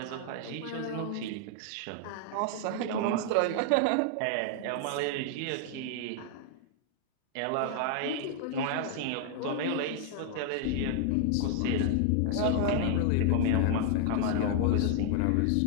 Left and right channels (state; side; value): different; both; correlation 0.00